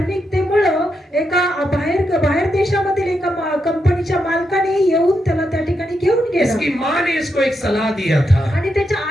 एका बाहेर देशामधील एका कंपनीच्या मालकाने येऊन त्याला त्या ठिकाणी घेऊन गेला. इसकी माँ ने इसको एक सलाह दिया था, आणि त्याच्या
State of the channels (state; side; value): normal; both; correlation 0.83